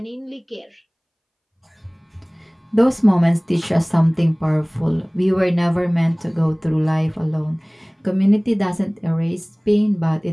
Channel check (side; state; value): both; identical; correlation 1.00